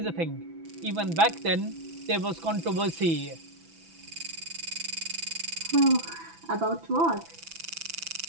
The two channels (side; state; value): left; late; 6.0 ms